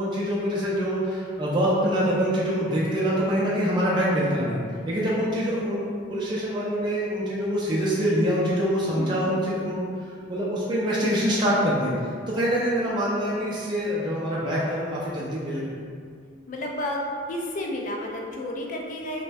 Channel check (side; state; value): both; normal; correlation 0.47